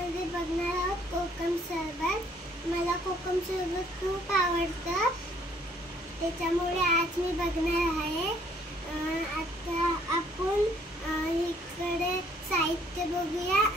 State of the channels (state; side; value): normal; both; correlation 0.63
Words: बघणार आहोत कोकम सरबत। मला कोकम सरबत खूप आवडतं, त्याच्यामुळे आज मी बघणार आहे। आता आपण इकडे साहित्य बघूया